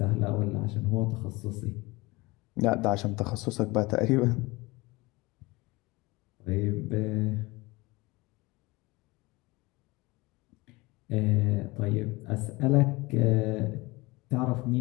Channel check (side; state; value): right; quieter; 22.9 dB